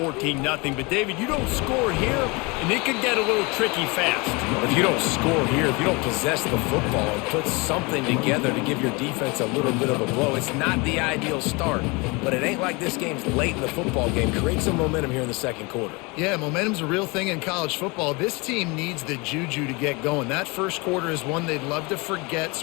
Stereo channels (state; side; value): quieter; right; 27.2 dB